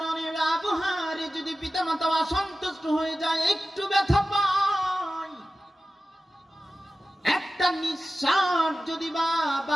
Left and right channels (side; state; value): both; normal; correlation 0.95